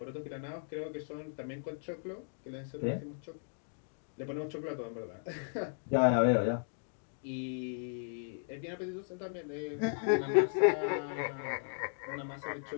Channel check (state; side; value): silent; right; digital silence